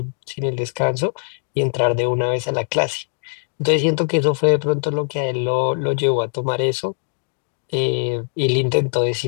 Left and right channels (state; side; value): silent; right; digital silence